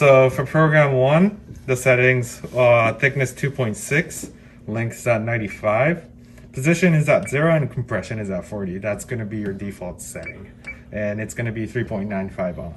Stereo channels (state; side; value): identical; both; correlation 1.00